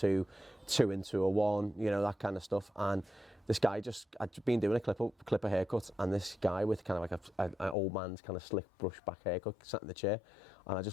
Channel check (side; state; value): right; drops out; at 7.8 s